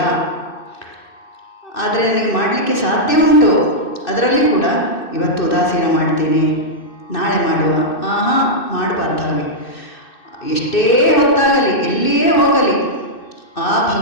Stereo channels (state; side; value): late; right; 2.6 ms